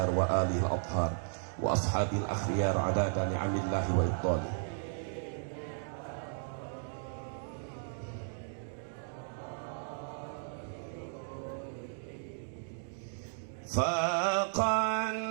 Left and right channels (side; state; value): left; silent; digital silence